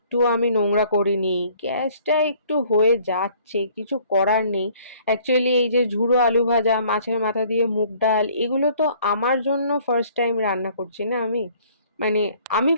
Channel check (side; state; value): both; inverted; correlation -0.57